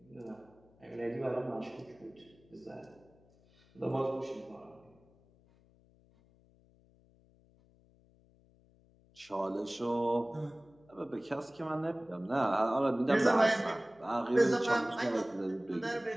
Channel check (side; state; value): left; noise; hum, 29 dB below the sound